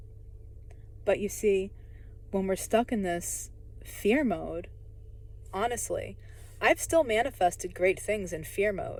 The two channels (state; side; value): identical; both; correlation 1.00